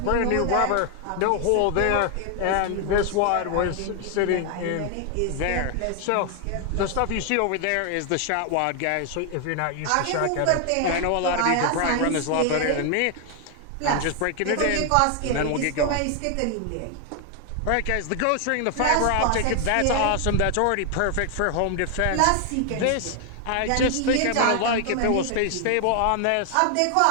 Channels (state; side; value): different; both; correlation 0.00